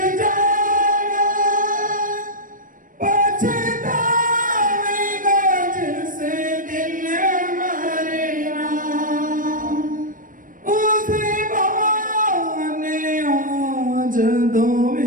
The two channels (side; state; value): left; late; 0.39 ms